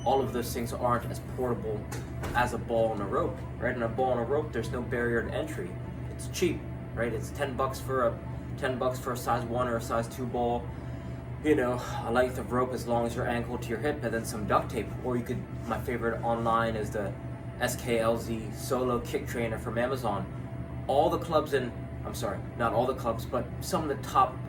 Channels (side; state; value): both; identical; correlation 1.00